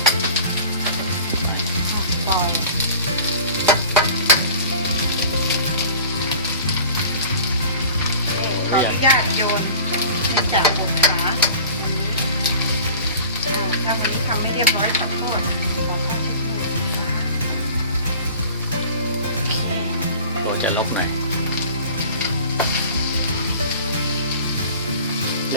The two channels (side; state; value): both; inverted; correlation -0.43